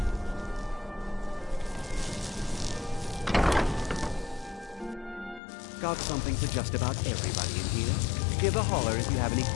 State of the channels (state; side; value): drops out; right; at 5.4 s